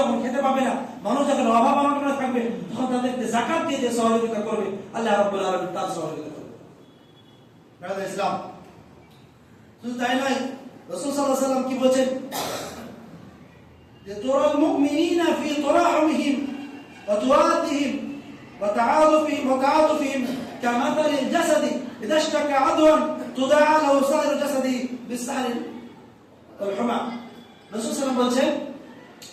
খেতে পাবে না, মানুষ যখন অভাব অনটনে থাকবে, তখন তাদেরকে যাকাত দিয়ে যে সহযোগিতা করবে আল্লাহ রাব্বুল আলামিন তার সহযোগিতা করবে। ব্রাদার ইসলাম, শুধু তাই নয়, রাসূল সাল্লাল্লাহু আলাইহি ওয়াসাল্লাম কি বলেন যে তুরাল মুমিনিনা ফি তুরাহিমিহিম ওয়া তুওয়াদিহিম ওয়া তাআতুফিহিম কামাথালিল জাসাদি ইযা ইশতাকা আদওয়ান তুদাআ লাহু সাইরু জাসাদি বিসসাহরি ওয়াল হুমা। রাসূল সাল্লাল্লাহু আলাইহি ওয়াসাল্লাম বলেন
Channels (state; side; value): identical; both; correlation 1.00